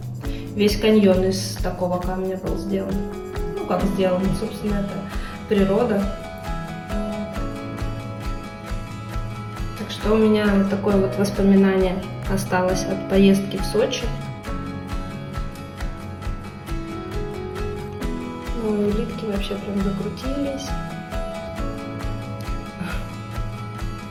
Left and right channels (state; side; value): identical; both; correlation 1.00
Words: Весь каньон из такого камня был сделан. Ну, как сделан, собственно, это природа. Так что у меня такое вот воспоминание осталось от поездки в Сочи. Ну, улитки вообще прям закрутились.